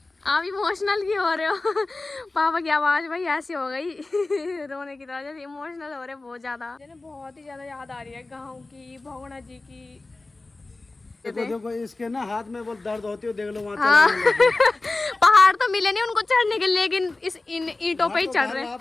आप इमोशनल क्यों हो रहे हो? पापा की आवाज भाई ऐसी हो गई रोने की तरह, जैसे इमोशनल हो रहे बहुत ज्यादा। बहुत ही ज्यादा याद आ रही है गाँव की, भगोना जी की। देखो देखो इसके ना हाथ में वो दर्द होती है, देख लो वहाँ हाँ। चलाने लगे। पहाड़ तो मिले नहीं उनको चढ़ने के लिए, लेकिन इस इन ईंटों पे ही तो चढ़ रहे हैं।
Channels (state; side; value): quieter; right; 3.2 dB